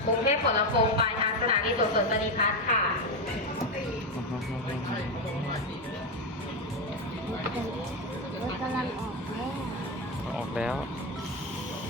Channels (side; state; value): both; normal; correlation 0.11